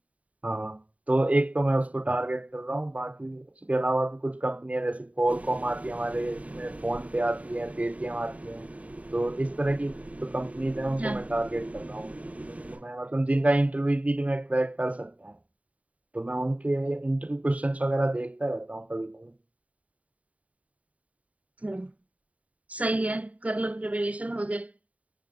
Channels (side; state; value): left; late; 0.068 ms